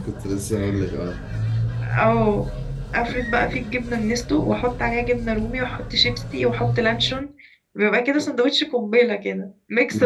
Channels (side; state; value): both; identical; correlation 1.00